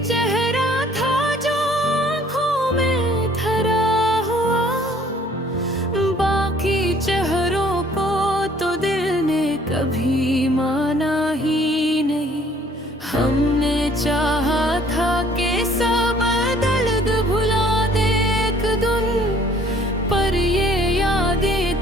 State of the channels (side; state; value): both; normal; correlation 0.58